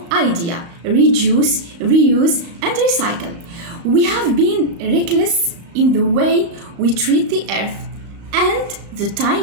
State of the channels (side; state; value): left; late; 35 ms